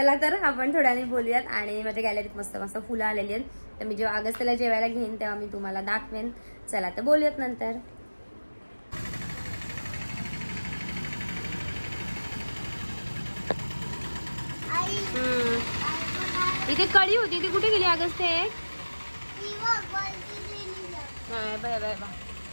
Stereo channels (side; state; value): both; inverted; correlation -1.00